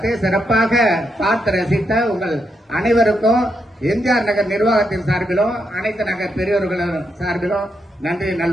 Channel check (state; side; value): normal; both; correlation 0.81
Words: சிறப்பாக பார்த்து ரசித்த உங்கள் அனைவருக்கும் எம்ஜிஆர் நகர் நிர்வாகத்தின் சார்பிலும் அனைத்து நகர் பெரியவர்களின் சார்பிலும் நன்றி